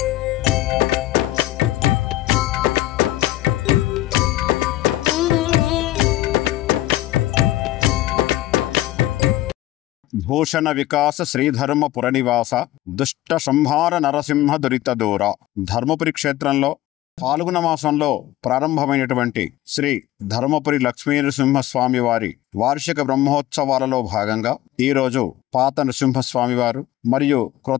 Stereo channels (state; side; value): quieter; right; 15.4 dB